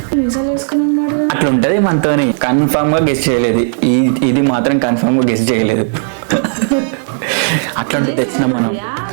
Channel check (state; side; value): silent; left; 61 dB below the other